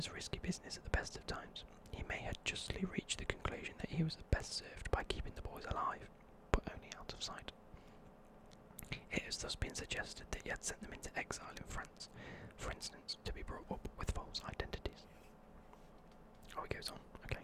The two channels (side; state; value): both; identical; correlation 1.00